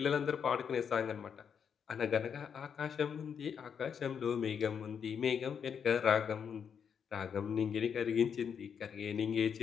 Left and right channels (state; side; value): quieter; right; 7.2 dB